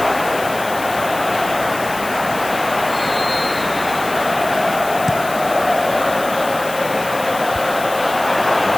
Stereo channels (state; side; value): noise; left; hiss, 13 dB below the sound